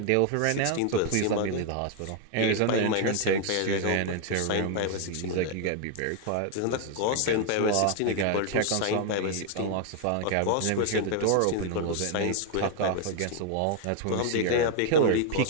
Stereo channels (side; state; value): both; different; correlation 0.00